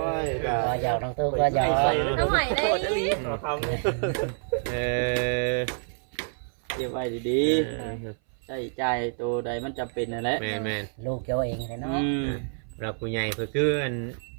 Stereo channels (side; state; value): left; silent; 57 dB below the other